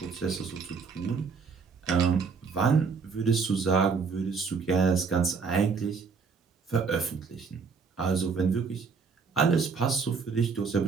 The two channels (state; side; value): quieter; left; 5.2 dB